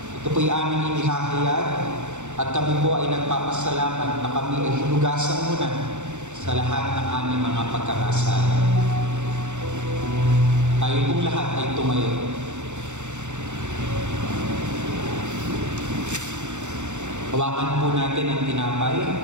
Ito po'y aming inihahayag at kami po ay nagpapasalamat na kami ay hinugasan mo na sa lahat ng aming mga pagkakasala. Tayo pong lahat ay tumayo. Hawakan po natin ang tinapay.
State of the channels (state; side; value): late; left; 0.84 ms